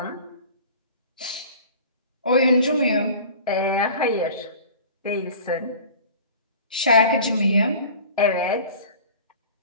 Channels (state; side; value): inverted; both; correlation -0.42